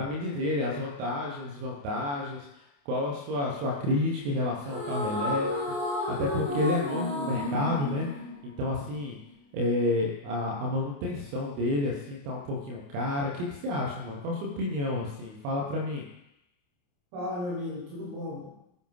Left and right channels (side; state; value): left; late; 28 ms